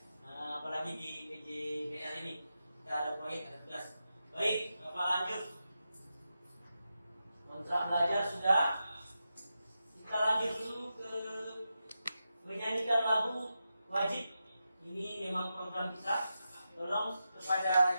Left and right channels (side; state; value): both; inverted; correlation -0.89